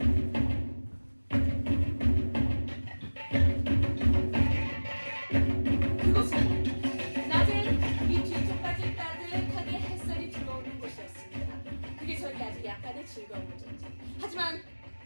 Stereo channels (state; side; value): inverted; both; correlation -1.00